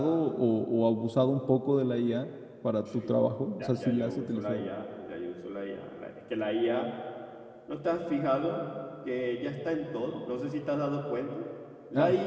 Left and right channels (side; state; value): both; identical; correlation 1.00